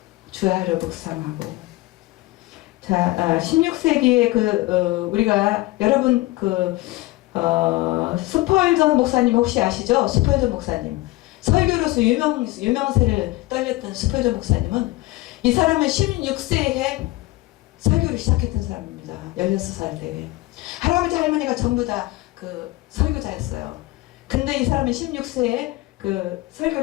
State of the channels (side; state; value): right; quieter; 19.1 dB